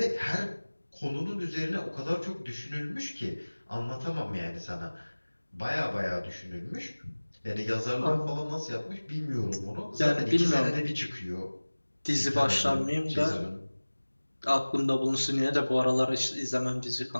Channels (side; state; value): both; inverted; correlation -1.00